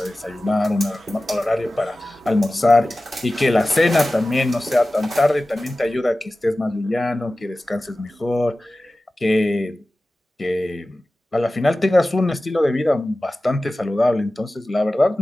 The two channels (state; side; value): normal; both; correlation 0.96